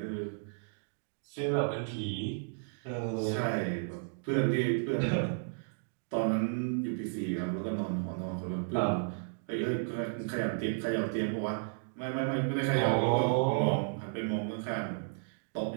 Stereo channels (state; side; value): silent; left; digital silence